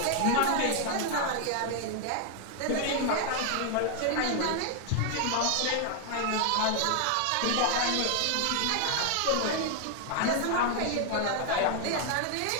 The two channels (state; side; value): different; both; correlation 0.00